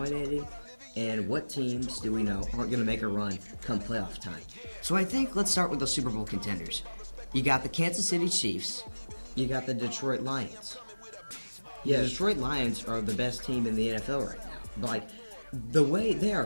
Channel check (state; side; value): inverted; both; correlation -1.00